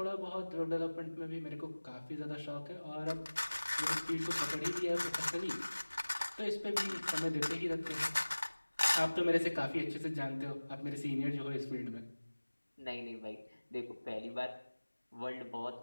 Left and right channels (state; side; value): inverted; both; correlation -1.00